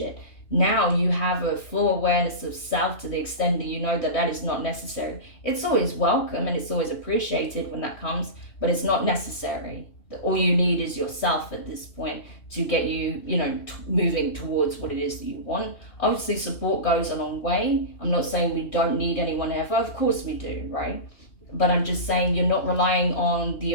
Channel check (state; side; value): late; right; 2.9 ms